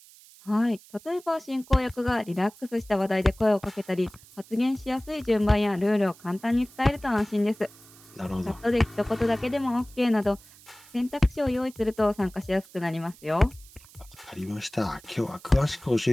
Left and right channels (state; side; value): noise; right; hiss, 23 dB below the sound